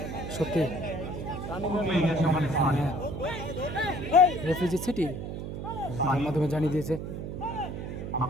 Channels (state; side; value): noise; right; hum, 6 dB below the sound